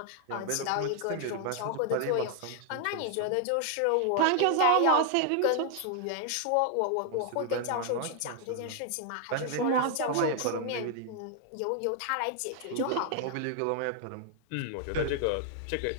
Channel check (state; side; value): different; both; correlation 0.00